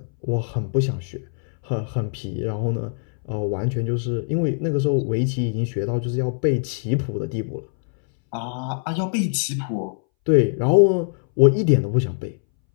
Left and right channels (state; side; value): silent; right; 62 dB below the other